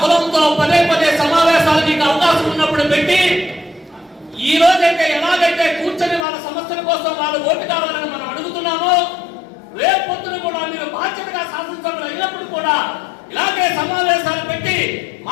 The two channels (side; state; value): right; drops out; at 6.2 s